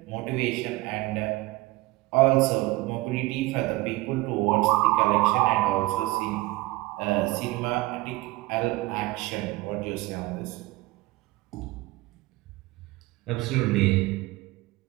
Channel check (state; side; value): quieter; left; 20.1 dB